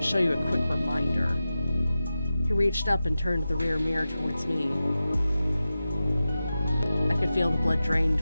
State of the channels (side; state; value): both; inverted; correlation -0.93